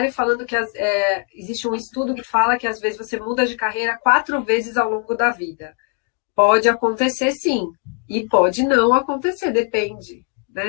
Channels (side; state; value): right; quieter; 36.1 dB